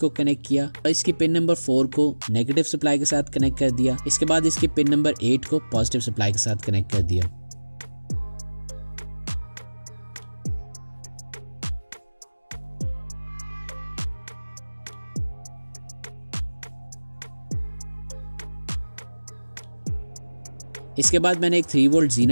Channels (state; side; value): inverted; both; correlation -1.00